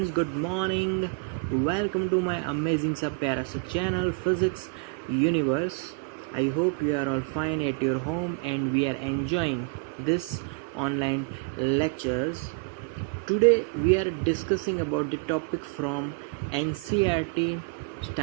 good morning. Welcome to my amazing sub pyara channel Physics Universe. I hope you are all fine at your home and we are enjoying this online lectures. Today we are discussing about the topic from NCERT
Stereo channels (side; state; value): left; quieter; 32.7 dB